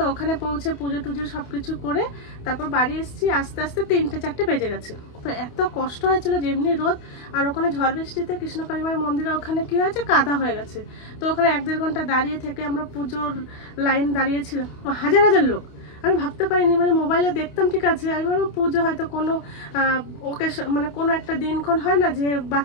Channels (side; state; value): right; late; 28 ms